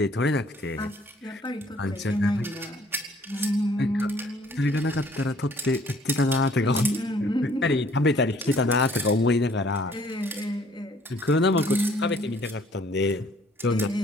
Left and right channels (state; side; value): normal; both; correlation 0.59